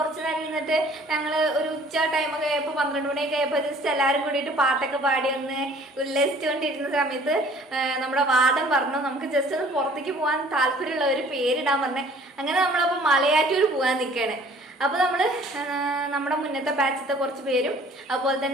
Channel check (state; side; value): normal; both; correlation 0.53